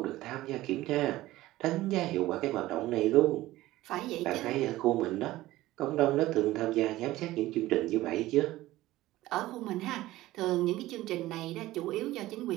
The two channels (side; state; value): left; quieter; 16.7 dB